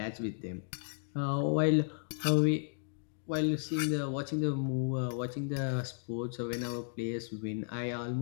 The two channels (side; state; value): right; silent; digital silence